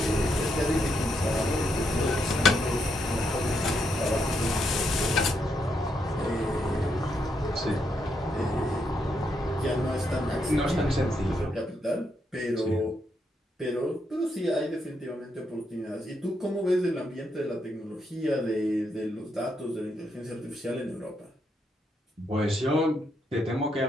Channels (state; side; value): normal; both; correlation 0.79